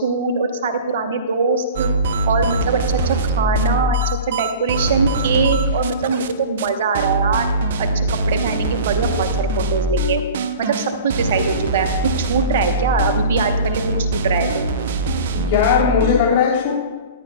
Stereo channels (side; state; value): both; inverted; correlation -0.38